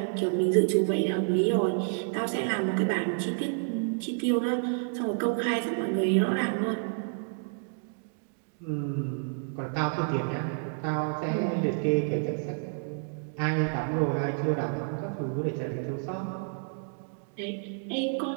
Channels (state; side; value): silent; left; 58 dB below the other